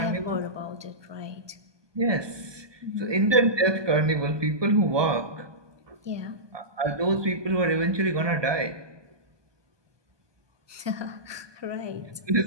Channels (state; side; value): late; left; 1.2 ms